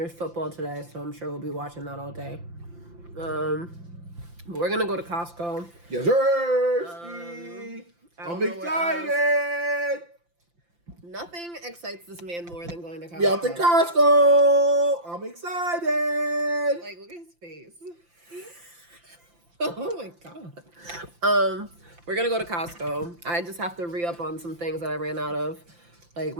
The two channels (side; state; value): left; late; 5.8 ms